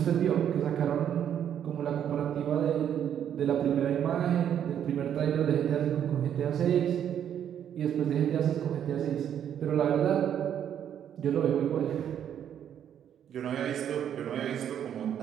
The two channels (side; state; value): left; quieter; 9.5 dB